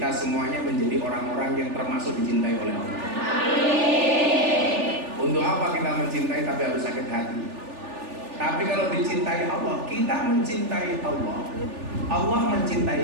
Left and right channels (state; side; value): late; left; 3.4 ms